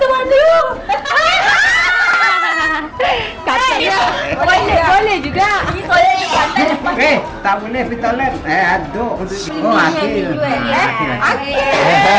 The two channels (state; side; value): identical; both; correlation 1.00